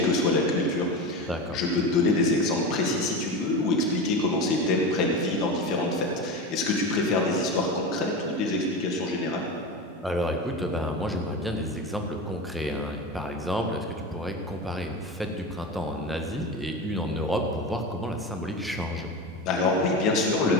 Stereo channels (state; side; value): normal; both; correlation 0.24